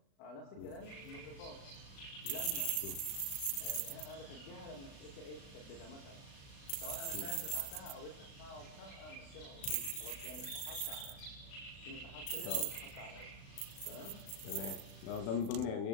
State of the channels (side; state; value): right; late; 36 ms